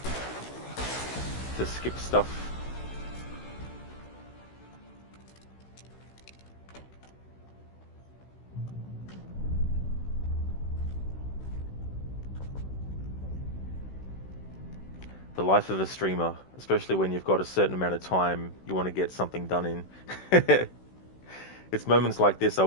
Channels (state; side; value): late; right; 16 ms